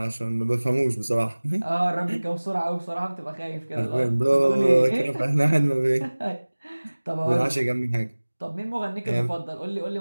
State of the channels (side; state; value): both; inverted; correlation -1.00